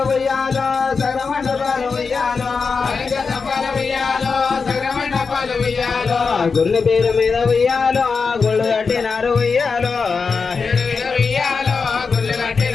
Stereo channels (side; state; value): right; quieter; 5.0 dB